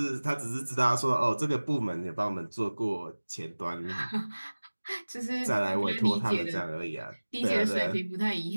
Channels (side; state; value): both; inverted; correlation -1.00